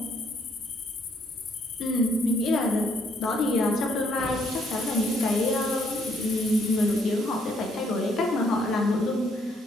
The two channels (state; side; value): normal; both; correlation 0.69